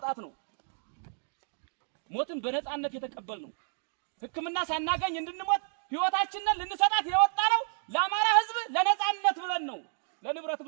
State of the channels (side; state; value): left; silent; digital silence